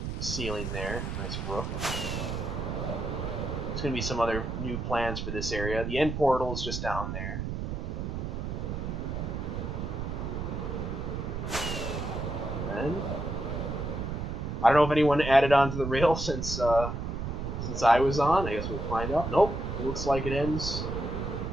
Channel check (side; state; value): right; noise; rumble, 4 dB below the sound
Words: ceiling there, nice roof. There's going to be some other new plans for this area. The end portal is just down there. And then, I don't know if anyone added on to the rail since I was on. I guess we'll find out. Nope, it looks like it ends